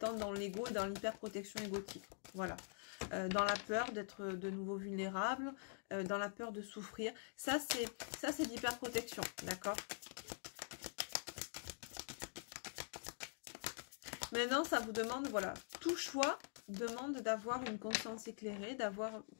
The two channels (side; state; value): right; silent; digital silence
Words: dans l'ego et dans l'hyperprotection égotique. Voilà. Dans la peur d'être de nouveau vulnérable, dans la peur de souffrir. Ça, c'est l'hyperprotection, d'accord? Maintenant, ça vous demande, voilà, tout choix demande d'avoir une conscience éclairée, d'avoir